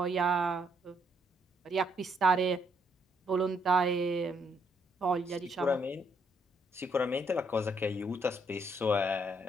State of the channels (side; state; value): both; normal; correlation 0.72